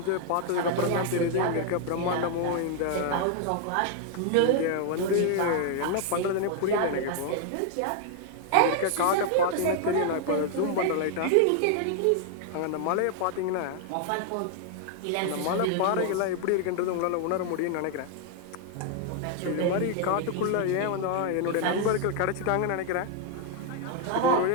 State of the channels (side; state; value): both; different; correlation 0.00